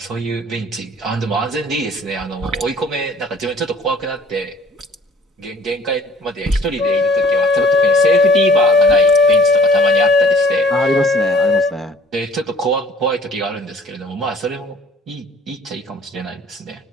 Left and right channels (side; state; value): both; normal; correlation 0.53